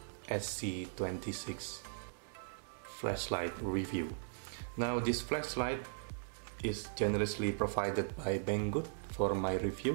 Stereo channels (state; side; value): silent; left; digital silence